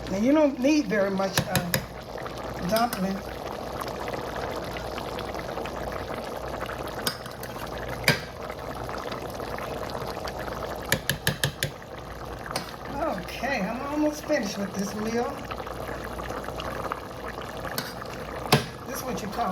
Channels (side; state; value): both; identical; correlation 1.00